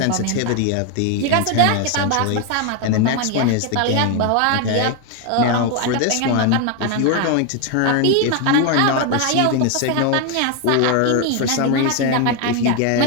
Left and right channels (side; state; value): both; different; correlation 0.01